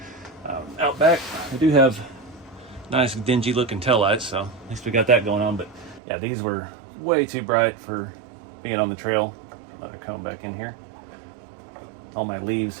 Out back, I do have nice dingy looking taillights, so at least we got that going on. But yeah, these were way too bright for being on the trail. Let it come back in here. All my leaves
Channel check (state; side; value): drops out; left; at 6.0 s